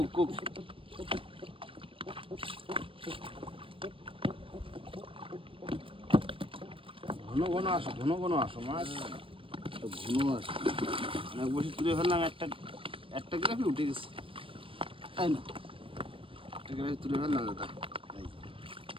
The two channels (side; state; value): left; late; 0.25 ms